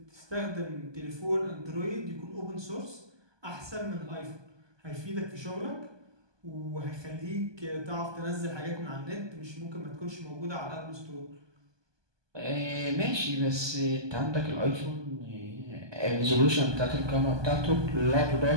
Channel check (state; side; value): late; left; 1.2 ms